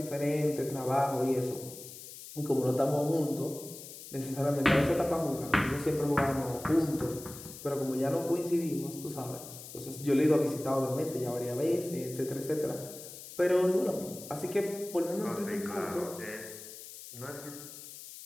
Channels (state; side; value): noise; left; hiss, 14 dB below the sound